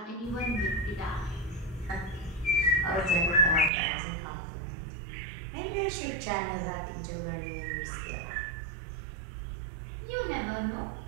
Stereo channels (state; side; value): drops out; left; at 3.7 s